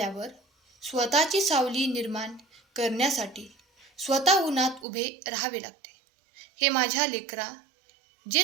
स्वतःची सावली निर्माण करण्यासाठी स्वतः उन्हात उभे राहावे लागते. हे माझ्या लेकरा,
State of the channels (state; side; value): drops out; left; at 4.9 s